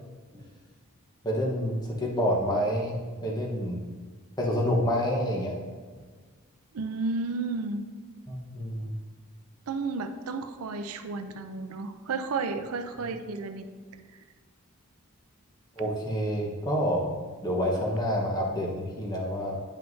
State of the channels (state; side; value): normal; both; correlation 0.35